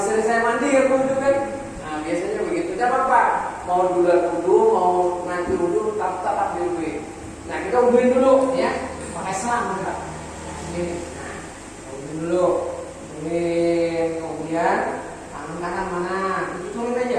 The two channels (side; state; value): both; identical; correlation 1.00